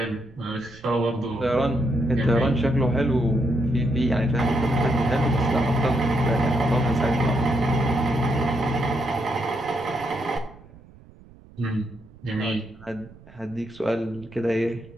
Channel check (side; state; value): right; noise; rumble, 23 dB below the sound